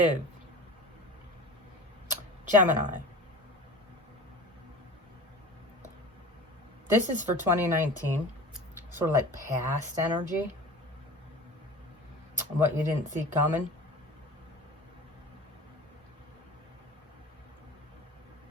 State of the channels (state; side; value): normal; both; correlation 0.37